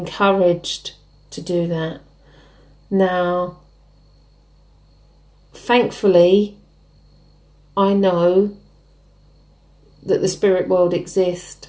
to do that. Now, thankfully, I know that the spirit world exists.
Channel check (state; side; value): identical; both; correlation 1.00